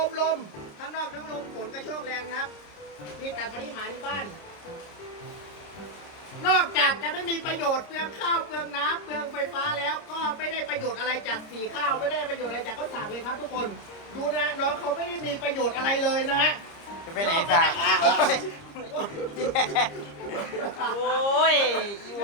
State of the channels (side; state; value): right; late; 30 ms